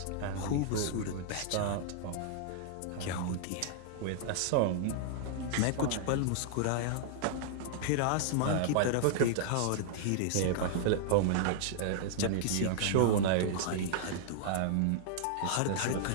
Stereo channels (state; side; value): different; both; correlation -0.01